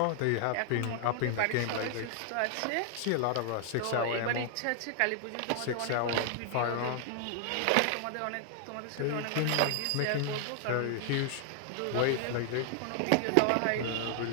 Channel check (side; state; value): both; different; correlation 0.00